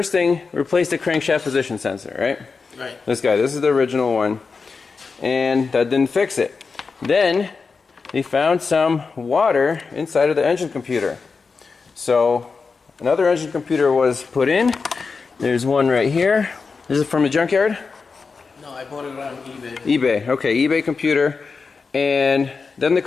thing, replaced the crankshaft position sensor, right? Right. This is the original one, and that didn't fix it. Then they found some water inside of the engine computer. So another engine computer was put in. There's one right here. Is it from a junkyard? No, I bought it on eBay. eBay, okay, eBay computer. And then the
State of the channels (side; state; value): right; quieter; 4.8 dB